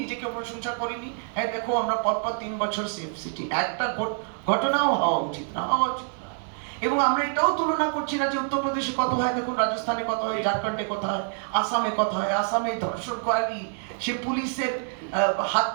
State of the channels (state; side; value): silent; left; 61 dB below the other